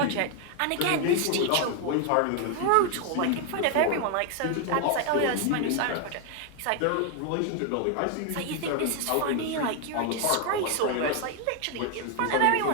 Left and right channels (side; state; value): both; different; correlation 0.01